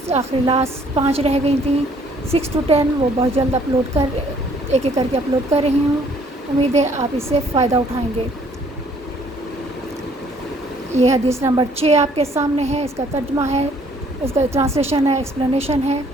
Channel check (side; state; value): both; normal; correlation 0.62